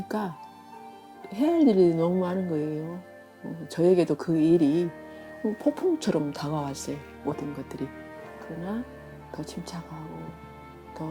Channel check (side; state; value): both; identical; correlation 1.00